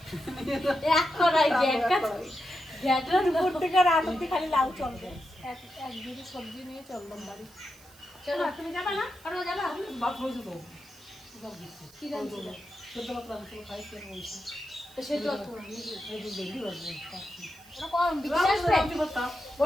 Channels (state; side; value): noise; right; hiss, 24 dB below the sound